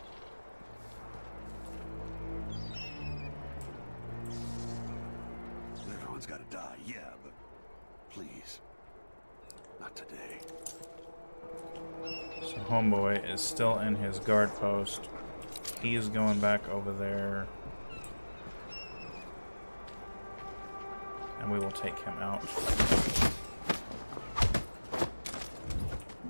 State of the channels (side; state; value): both; inverted; correlation -1.00